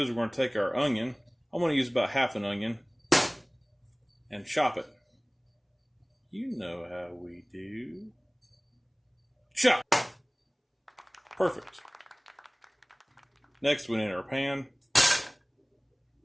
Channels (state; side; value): identical; both; correlation 1.00